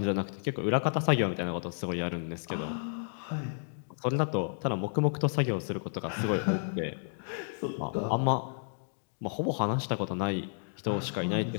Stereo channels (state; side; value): silent; right; digital silence